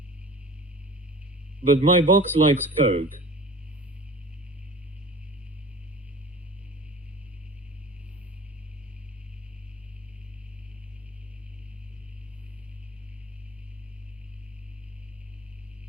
But my box likes coke.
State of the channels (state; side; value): normal; both; correlation 0.41